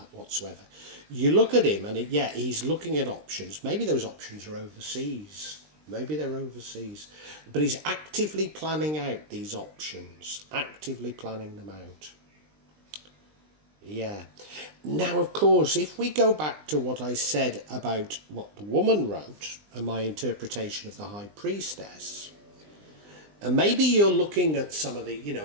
whatsoever. You look at him and he's looking at options. Maybe those options are overseas. Maybe they're overseas. But he's actively planning out these options. Actively planning them out. Yeah. Now, of course, if we go back to what I said about what the woman wrote and my interpretation of the High Priestess, and maybe you're looking at some of the,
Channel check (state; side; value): late; left; 20 ms